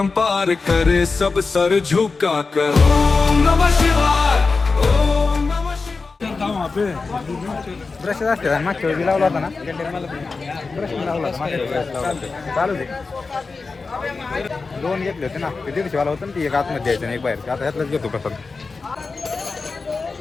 करे सब सर झुका कर ओम नमः शिवाय ओम नमः शिवाय ब्रश असते आणि मागच्या वेळी लावला होता ना ब्रश लावला होता मागच्या वेळी brush लावला होता. चालू दे 2 घेतले होते ना ते 150 वाला होतं ना ती एक आतमध्ये द्यायचं आणि एक बाहेर आता ह्यातलंच घेतो कसं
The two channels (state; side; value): quieter; right; 4.2 dB